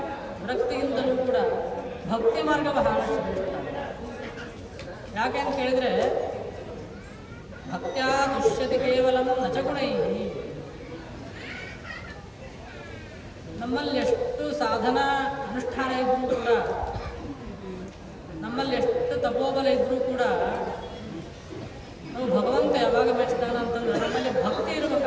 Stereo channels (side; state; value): both; identical; correlation 1.00